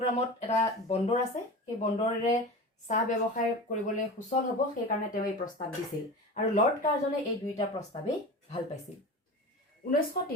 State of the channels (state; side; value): normal; both; correlation 0.31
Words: এটা বন্দৰ আছে, সেই বন্দৰেৰে চাহ ব্যৱসায় কৰিবলৈ সুচল হ'ব সেইকাৰণে তেওঁ এই প্ৰস্তাৱ দিছিল আৰু লৰ্ড কাৰ্জনে এই দুইটা প্ৰস্তাৱেই ভাল পাইছিল